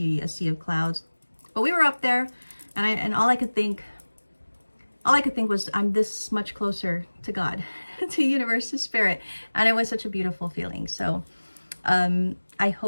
a sea of clouds. But we were up there, and all I could think was, I'm this much closer to God, to universe, to spirit. And it was such a beautiful feeling. So I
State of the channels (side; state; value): both; inverted; correlation -1.00